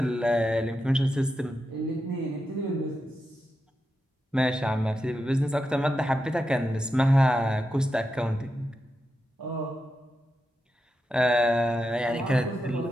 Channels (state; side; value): normal; both; correlation 0.88